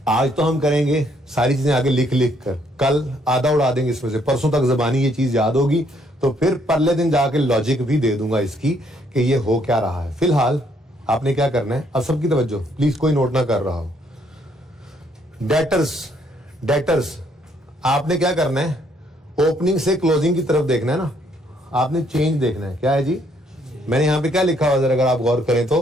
आज तो हम करेंगे सारी चीजें आगे लिख लिख कर, कल आधा उड़ा देंगे इसमें से, परसों तक जबानी ये चीज याद होगी, तो फिर परले दिन जाके लॉजिक भी दे दूंगा इसकी कि ये हो क्या रहा है। फिलहाल आपने क्या करना है, अब सबकी तवज्जो प्लीज, कोई नोट ना कर रहा हो। डेटर्स आपने क्या करना है, ओपनिंग से क्लोजिंग की तरफ देखना है ना, आपने चेंज देखना है। क्या है जी, मैंने यहां पे क्या लिखा हुआ जरा अगर आप गौर करें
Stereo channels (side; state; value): both; normal; correlation 0.69